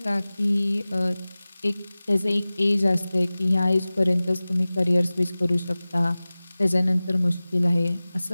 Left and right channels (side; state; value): both; inverted; correlation -0.98